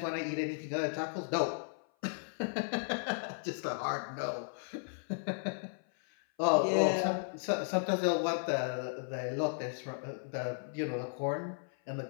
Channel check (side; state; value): right; silent; 54 dB below the other